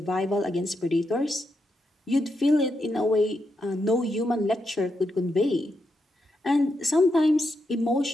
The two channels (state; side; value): normal; both; correlation 0.83